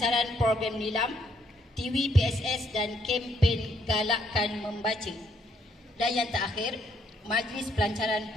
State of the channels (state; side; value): normal; both; correlation 0.71